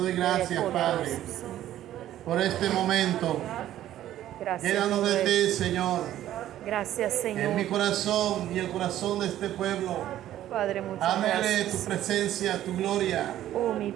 gracias, Padre, por este momento. Gracias, Llénanos de Padre. ti, Señor, Gracias, Señor. en mi corazón y el corazón de este pueblo. Padre, muchas Ámele tu gracias. presencia, tu gloria. Oh, mi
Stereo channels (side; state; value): left; quieter; 12.7 dB